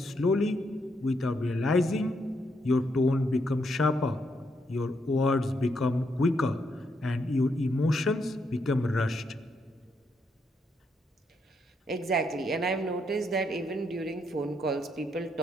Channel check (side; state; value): both; normal; correlation 0.77